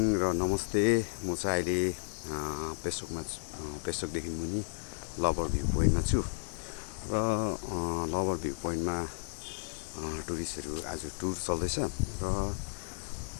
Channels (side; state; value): right; silent; digital silence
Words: र नमस्ते। म चाहिँ अहिले पेसोकदेखि मुनि लभर भ्यू पोइन्टमा छु र लभर भ्यू पोइन्टमा टुरिस्टहरू आज टुर चल्दैछ र